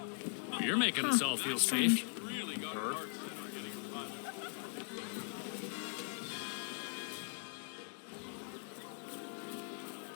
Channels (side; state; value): right; silent; 51 dB below the other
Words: making us all feel safe. Really got her heart set on getting a pilot.